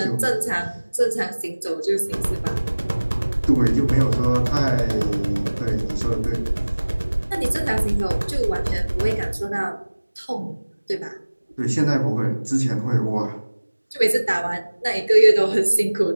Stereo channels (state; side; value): inverted; both; correlation -1.00